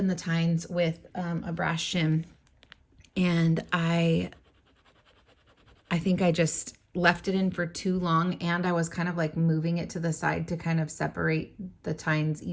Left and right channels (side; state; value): both; identical; correlation 1.00